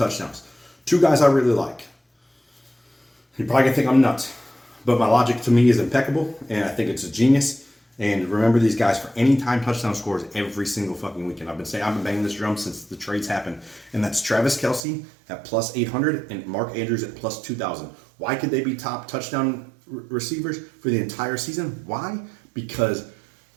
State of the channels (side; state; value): left; drops out; at 14.8 s